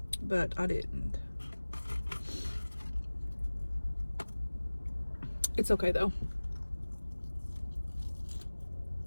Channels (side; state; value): both; inverted; correlation -1.00